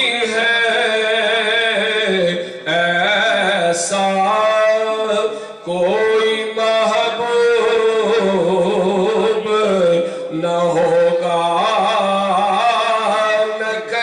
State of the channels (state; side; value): identical; both; correlation 1.00